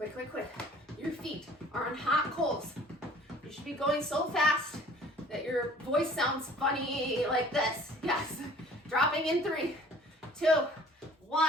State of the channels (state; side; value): normal; both; correlation 0.51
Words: quick, quick. Your feet are on hot coals. You should be going so fast that your voice sounds funny like this. Yes. Dropping in 3, 2,